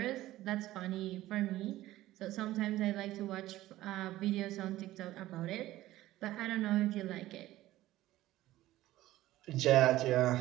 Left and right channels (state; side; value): quieter; left; 15.7 dB